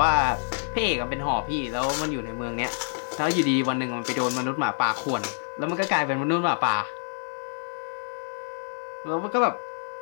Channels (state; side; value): silent; right; digital silence